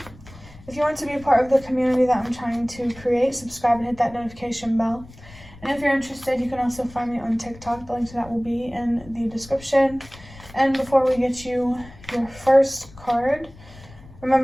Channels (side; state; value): left; noise; rumble, 20 dB below the sound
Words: If you want to be a part of the community that I'm trying to create, subscribe and hit that notification bell. And if you're interested, you can also find me on TikTok. The link to that will be in the description. And before we get you your first card,